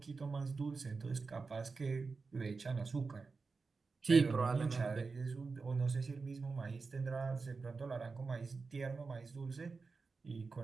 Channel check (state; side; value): quieter; left; 4.4 dB